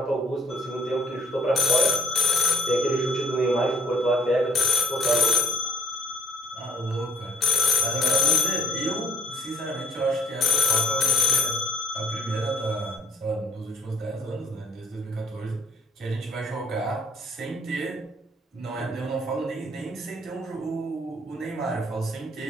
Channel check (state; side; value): normal; both; correlation 0.61